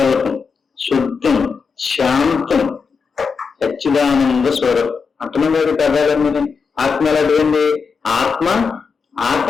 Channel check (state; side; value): quieter; right; 5.4 dB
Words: శుద్ధం, శాంతం, సచ్చిదానంద స్వరం. అంటున్నాడు కదాలని. ఆత్మ ఎలాంటిదండి? ఆత్మ